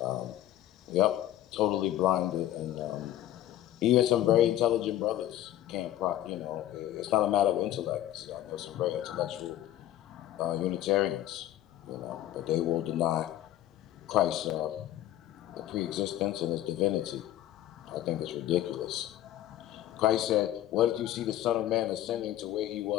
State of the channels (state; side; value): quieter; right; 13.1 dB